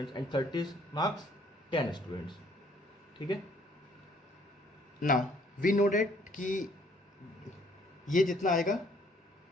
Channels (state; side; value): normal; both; correlation 0.62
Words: and 30 marks 10 students, ठीक है। नाउ वी नो डेट कि ये जितना आएगा